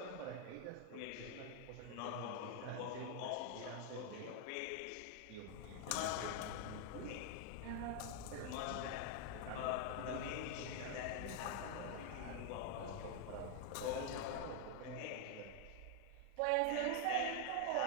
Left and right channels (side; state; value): both; different; correlation 0.00